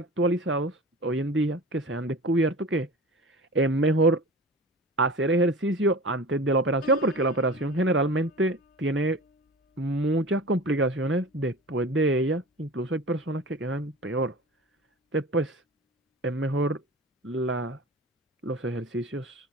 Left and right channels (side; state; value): both; normal; correlation 0.35